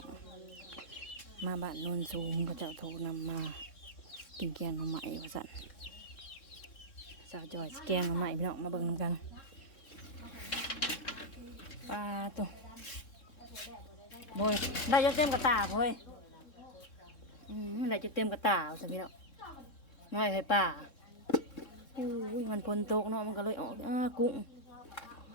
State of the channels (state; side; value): late; right; 3.6 ms